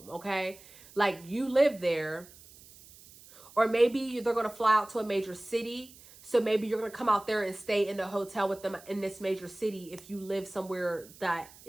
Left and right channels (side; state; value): right; noise; hiss, 22 dB below the sound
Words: okay? Like, you live there, or maybe they're going to fly out to a major city. So maybe you're going to come out there and stay in the hotel with them in this major city if you live somewhere that,